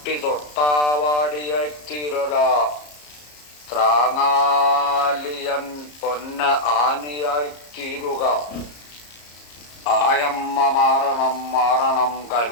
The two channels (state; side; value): late; right; 34 ms